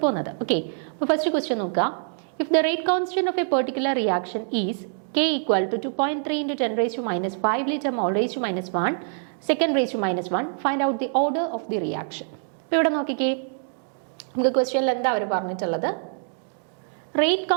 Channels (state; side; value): silent; left; digital silence